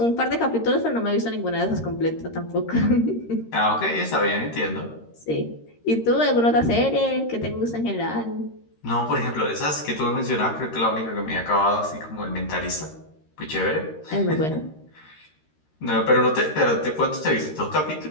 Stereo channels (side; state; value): right; late; 13 ms